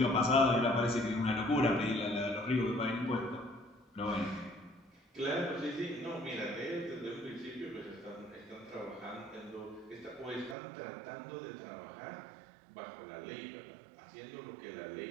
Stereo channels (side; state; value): left; drops out; at 10.6 s